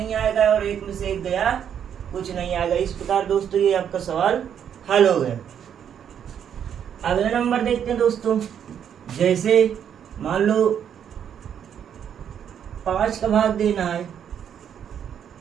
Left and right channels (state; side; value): quieter; left; 8.7 dB